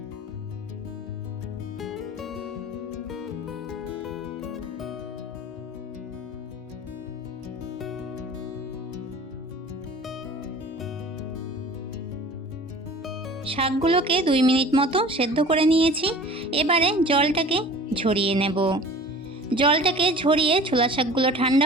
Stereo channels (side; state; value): both; normal; correlation 0.43